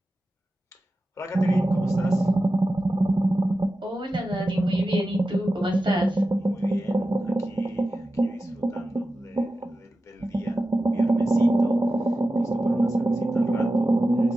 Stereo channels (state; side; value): normal; both; correlation 0.93